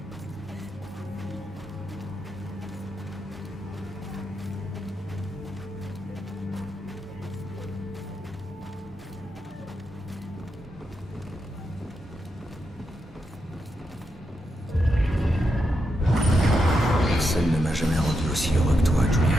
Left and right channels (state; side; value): normal; both; correlation 0.84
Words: Personne ne m'a jamais rendu aussi heureux que toi, Julia.